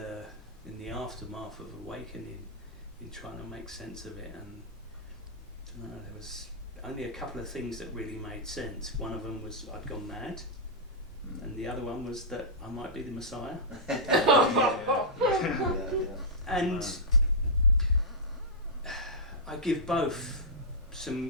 aftermath of awakening, in trying to make sense of it, and I don't know, there was only a couple of things that really made sense. One of them was I'd gone mad, and the other one was that I might be the Messiah. And I give both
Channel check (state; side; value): normal; both; correlation -0.11